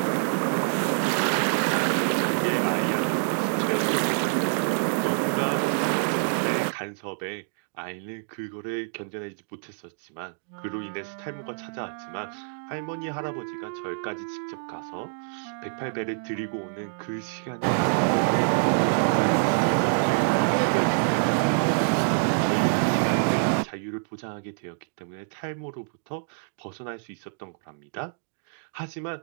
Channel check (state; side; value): silent; left; digital silence